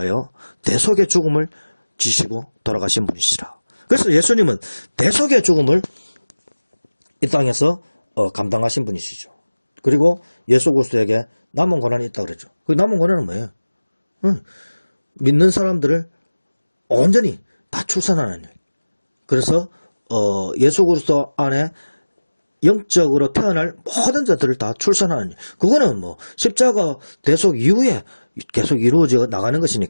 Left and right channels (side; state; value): both; inverted; correlation -1.00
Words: 대속의 죽음을 지시고 돌아가신 분이시라. 그래서 예수님은 대속의 죽음을 이 땅에서 감당하신 분이시죠. 그리고 예수 그리스도에게 남은 고난이 있다고 그랬죠. 그 남은 고난은 뭐예요? 믿는 사람들을 온전히 다 출산하는 일. 그래서 예수 그리스도 안에 영적으로 태어날 모든 자들을 다 출산하는 일. 그거는 십자가 대속 이후에 계속 이루어져 나가는